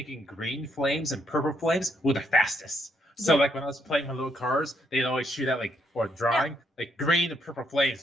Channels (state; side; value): normal; both; correlation 0.74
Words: green flames and purple flames were the fastest. So Yeah. like when I was playing my little cars, they'd always shoot out or drawing like green and purple